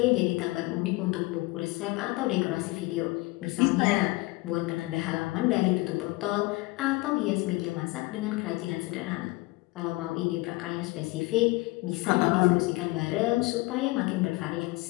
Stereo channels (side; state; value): right; quieter; 22.6 dB